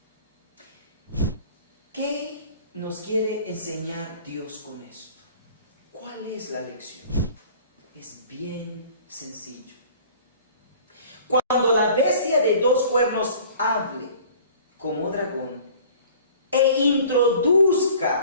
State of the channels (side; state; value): both; inverted; correlation -0.48